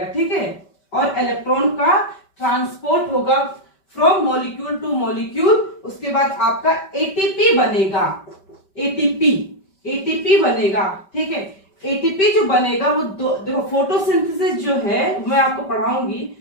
ठीक है। और इलेक्ट्रॉन का ट्रांसपोर्ट होगा फ्रॉम मॉलिक्यूल टू मॉलिक्यूल। उसके बाद आपका एटीपी बनेगा, एटीपी बनेगा, ठीक है। एटीपी जो बनेगा वो देखो फोटोसिंथेसिस जो है मैं आपको पढ़ाऊंगी,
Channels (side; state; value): right; late; 5.2 ms